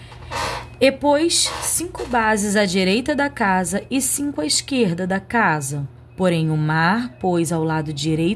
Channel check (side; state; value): both; identical; correlation 1.00